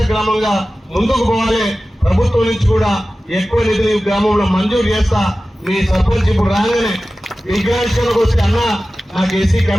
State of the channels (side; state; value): both; normal; correlation 0.95